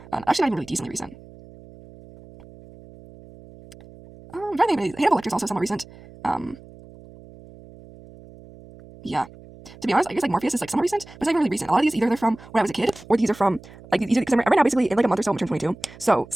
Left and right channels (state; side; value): noise; right; hum, 20 dB below the sound